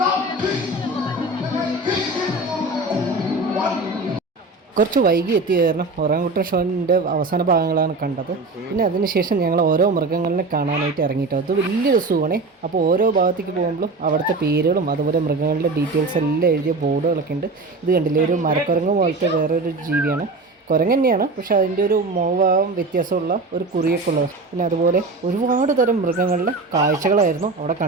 കുറച്ച് വൈകി എത്തിയ കാരണം ഒറാങ്കുട്ടൻ ഷോൻ്റെ അവസാന ഭാഗങ്ങളാണ് കണ്ടത്. പിന്നെ അതിനുശേഷം ഞങ്ങൾ ഓരോ മൃഗങ്ങളിനെ കാണാനായിട്ട് ഇറങ്ങിയിട്ടോ. അത് വലിയൊരു സൂവാണേ. അപ്പോൾ ഓരോ ഭാഗത്തേക്ക് പോകുമ്പോഴും അവിടുത്തെ പേരുകളും അതുപോലെ മൃഗങ്ങളുടെ ഡീറ്റെയിൽസ് എല്ലാം എഴുതിയ ബോർഡുകളൊക്കെ ഉണ്ട്. ഇത് കണ്ടില്ലേ, ഒരു മരക്കുരങ്ങ് പോലത്തെ വേറൊരു ജീവിയാണ്. കുരങ്ങ് തന്നെയാണ്, പക്ഷേ അതിൻ്റെ ഒരു മോഭാവം വ്യത്യാസമുള്ള ഒരു കുറിയൊക്കെ ഉള്ളത്. പിന്നെ അതുപോലെ ഒരുപാട് തരം മൃഗങ്ങളുടെ കാഴ്ചകളായിരുന്നു അവിടെ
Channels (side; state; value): left; quieter; 3.3 dB